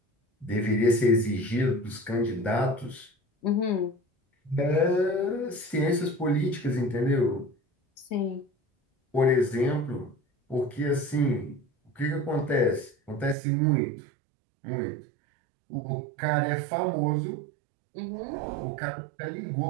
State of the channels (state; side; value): drops out; left; at 13.4 s